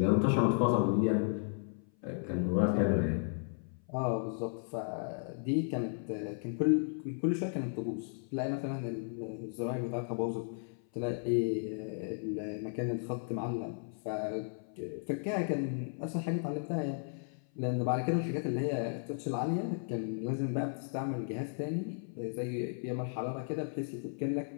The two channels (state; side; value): silent; right; 55 dB below the other